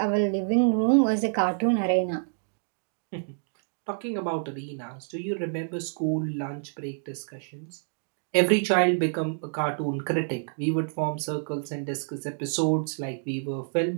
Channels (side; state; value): left; silent; digital silence